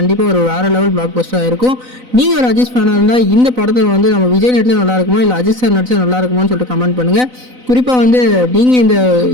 ஒரு வேறு லெவல் பிளாக் பஸ்டராக இருக்கும். நீங்கள் ஒரு அஜித் ஃபேனாக இருந்தால் இந்த படத்தை வந்து நம்ம விஜய் நடிச்சா நல்லா இருக்குமா இல்லை அஜித் சார் நடிச்சா நல்லா இருக்குமான்னு சொல்லிட்டு கமெண்ட் பண்ணுங்கள். குறிப்பாக வந்து நீங்கள் இந்த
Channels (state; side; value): late; left; 4.0 ms